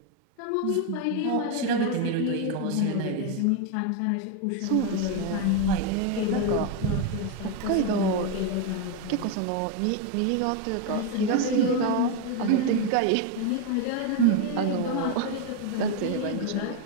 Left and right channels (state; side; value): different; both; correlation 0.02